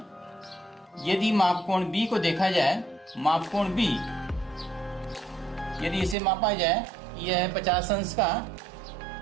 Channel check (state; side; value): drops out; left; at 6.2 s